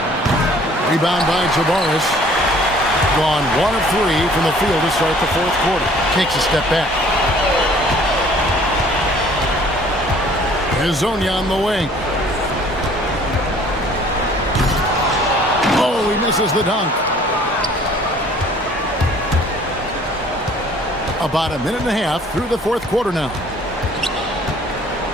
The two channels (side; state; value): both; normal; correlation 0.55